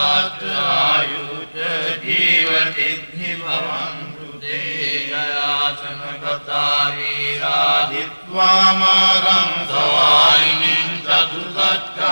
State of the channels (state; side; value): inverted; both; correlation -1.00